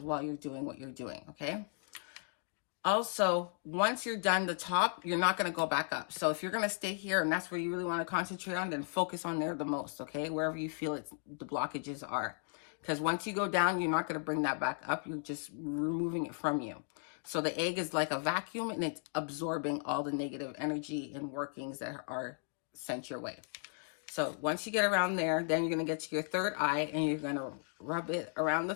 while you're doing what you're doing, okay? Also, once you're done the top, you're not going to go back up. So if you're going to stay here and that's where you really want to concentrate on, then focus on there the most, okay? Wherever you feel the blockages are. Because once you go down, you're not going to bring that back up. You're just removing it from you. So the egg is like a vacuum, and it's absorbing all the negative energy and workings that are sent your way. So once you get around there, then you're going to get to your third eye, and you're going to rub it around the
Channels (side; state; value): right; silent; 54 dB below the other